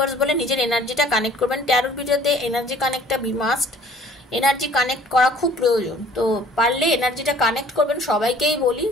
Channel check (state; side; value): normal; both; correlation 0.53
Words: বলে নিজের এনার্জিটা কানেক্ট করবেন। ট্যারোট ভিডিওতে এনার্জি কানেক্টটা বি মাস্ট, এনার্জি কানেক্ট করা খুব প্রয়োজন। তো পারলে এনার্জিটা কানেক্ট করবেন, সবাইকেই বলি।